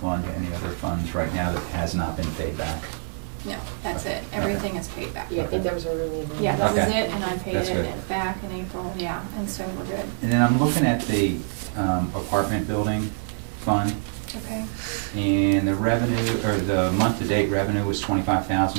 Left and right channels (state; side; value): silent; left; digital silence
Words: fund to any other funds right now that has not been paid back? No, that's it. Okay. Everything is paid back. Yeah, I think that was really. Yeah, that was Okay. it, and I paid That's it good. back in April, yeah, and so we're good. And then I'm looking at the apartment building fund, Okay, and the revenue, or the month-to-date revenue was